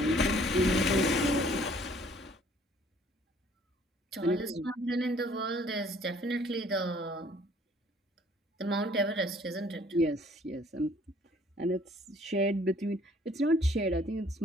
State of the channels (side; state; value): both; normal; correlation 0.58